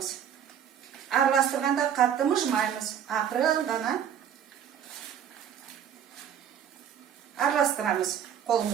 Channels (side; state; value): left; quieter; 8.9 dB